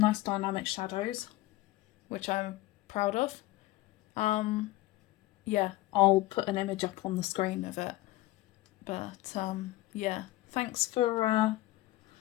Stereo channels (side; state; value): right; quieter; 17.6 dB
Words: nice dynamic shadows, which I'm proud of. Yeah, I'll put an image up on the screen of it. But, yeah, thanks for